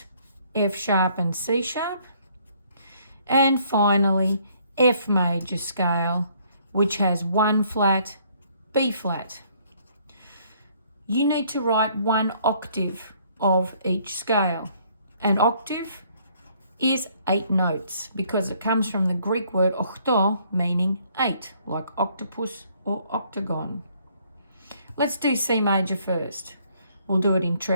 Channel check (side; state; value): both; inverted; correlation -0.64